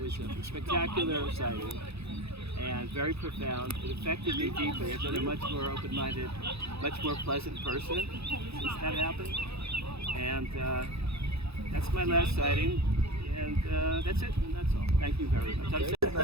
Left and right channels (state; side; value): late; left; 0.79 ms